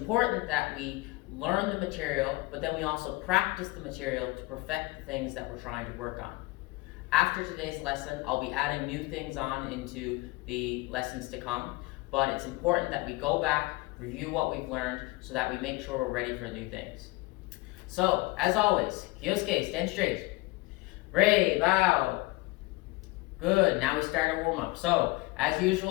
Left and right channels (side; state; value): right; quieter; 22.5 dB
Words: that we learn the material, but then we also practice the material to perfect the things that we're trying to work on. After today's lesson, I'll be adding new things on into the lessons to come, but it's important that we go back, review what we've learned, so that we make sure we're ready for new things. So, as always, Kyosuke, stand straight. Rei, bow. Good, now we start our warm-up. So, as